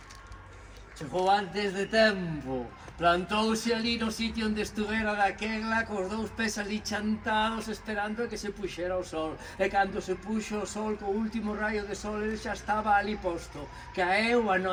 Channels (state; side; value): identical; both; correlation 1.00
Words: Chegou antes de tempo. Plantouse ali no sitio onde estuvera daquela cos dous pés ali chantados esperando a que se puxera o sol. E cando se puxo o sol, co último raio de sol, ele xa estaba ali posto. Caeu a